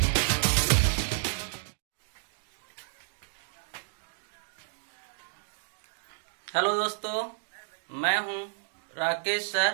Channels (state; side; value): silent; left; digital silence